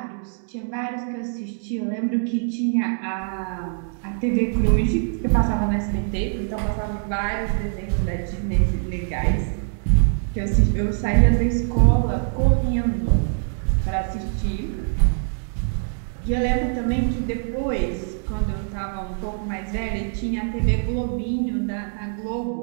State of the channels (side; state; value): left; silent; digital silence